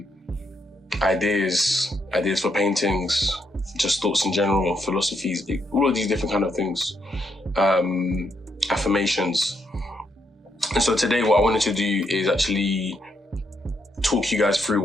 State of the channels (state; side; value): normal; both; correlation 0.77